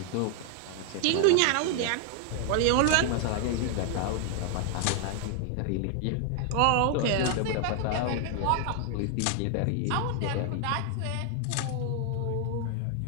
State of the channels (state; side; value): different; both; correlation 0.00